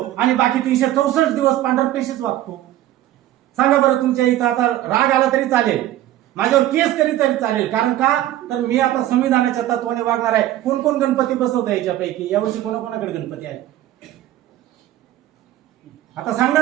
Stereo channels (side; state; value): left; quieter; 13.7 dB